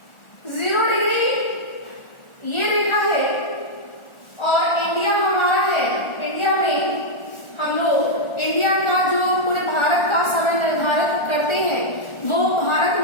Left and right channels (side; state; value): right; late; 1.4 ms